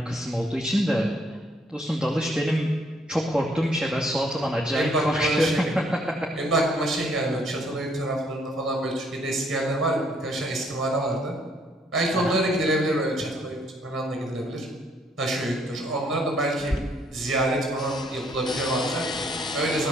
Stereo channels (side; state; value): both; normal; correlation 0.67